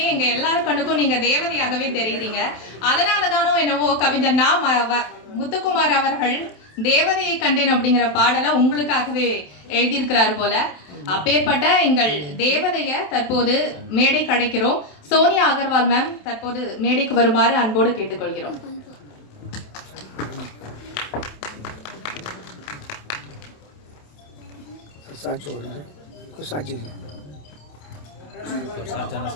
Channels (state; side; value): late; right; 28 ms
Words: எங்க எல்லாரும் கண்ணுக்கும் நீங்க தேவதையாகவே தெரியுறீங்க. அதனாலதானோ என்னவோ கவிஞர் முத்துக்குமார் அவர்கள் தேவதையை கண்டேன் அப்படிங்கிற பாடலை உங்களுக்காகவே எழுதியிருக்கிறார் போல. அப்பேற்பட்ட எங்கள் தேவதைய தற்போது மேடை கிடைக்கிறோம். சோனியா அகர்வால் மேம் தற்போது மேடைக்கு வருமாறு அன்போடு கேட்டுக்கொள்கிறோம்.